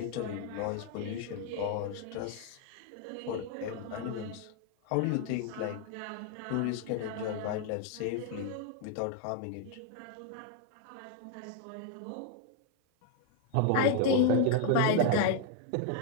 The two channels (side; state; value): both; different; correlation 0.00